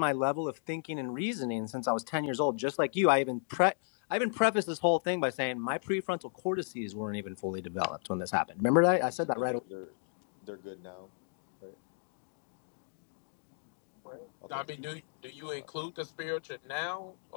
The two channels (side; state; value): right; silent; digital silence